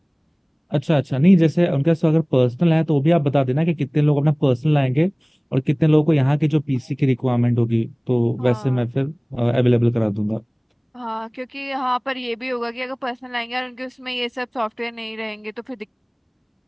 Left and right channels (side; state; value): both; identical; correlation 1.00